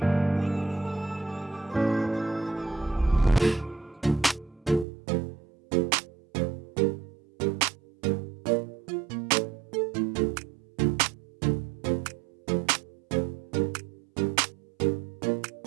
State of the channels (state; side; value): drops out; left; at 4.9 s